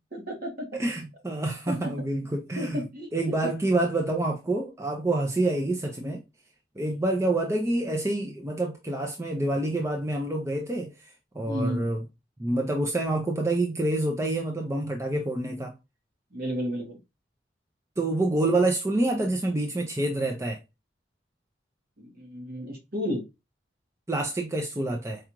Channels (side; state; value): both; normal; correlation 0.70